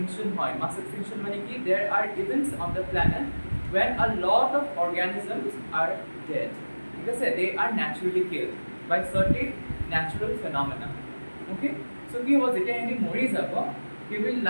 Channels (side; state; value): both; inverted; correlation -1.00